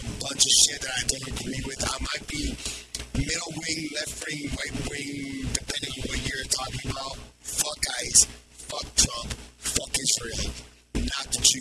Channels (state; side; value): identical; both; correlation 1.00